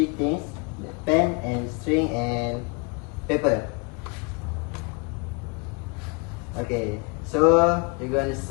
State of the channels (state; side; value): quieter; right; 32.0 dB